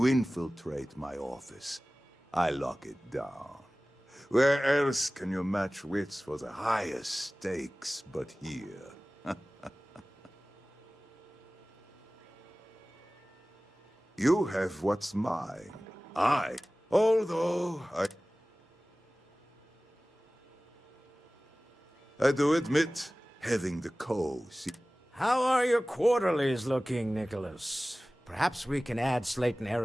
infiltrate my office. I lock it down. Where else can you match wits for the highest stakes but here? You have what's mine. Although I do admit, having the How are your quarterlies looking, Nicholas? Perhaps we can add Slayton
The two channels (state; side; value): normal; both; correlation 0.98